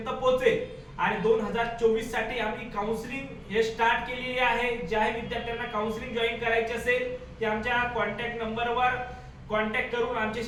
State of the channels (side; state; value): both; identical; correlation 1.00